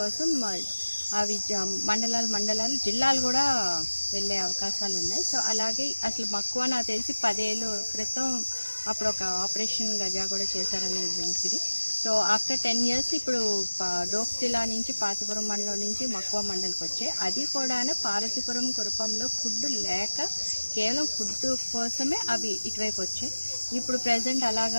అవి మండలాలు జిల్లాలు కూడా వెళ్ళే అవకాశాలు ఉన్నాయి. సో అలాగే అసలు మక్కువ నాకు తెలిసి 10 ఏళ్ళ క్రితం అప్పుడు ఒక ఆపరేషన్ గజా కూడా చేశారని వినికిడి. సో ఆఫ్టర్ 10 ఇయర్స్ ఇప్పుడు డోక్ జిల్లా నుంచి పార్తీపురం మండలం నుంచి మక్కువ మండలికి వచ్చాయి. అది కూడా పార్వతీపురం కురపంలో ఫుడ్ లేక కేవలం ఫుడ్ కోసమే అవి ఇటువైపు వచ్చాయి. ఇప్పుడు ప్రజెంట్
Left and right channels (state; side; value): inverted; both; correlation -1.00